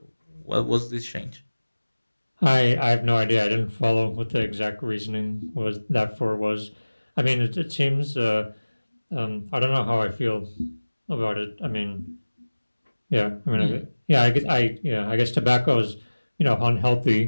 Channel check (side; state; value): both; inverted; correlation -1.00